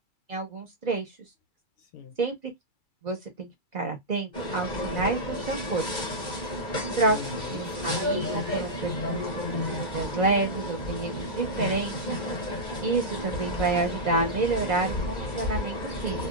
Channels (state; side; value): late; right; 2.3 ms